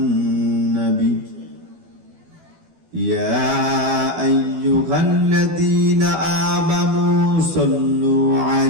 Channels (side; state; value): left; late; 12 ms